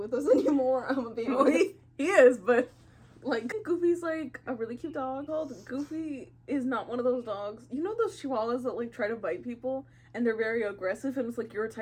us anymore. I'm gonna be honest. He is, but like Goofy's like a really cute dog. Goofy is not one of those dogs. You know those chihuahuas that like try to bite people and they're very aggressive and it's like, you're a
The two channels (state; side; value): identical; both; correlation 1.00